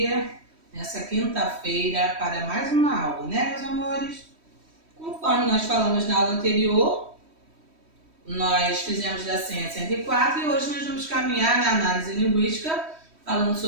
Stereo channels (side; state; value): left; late; 3.1 ms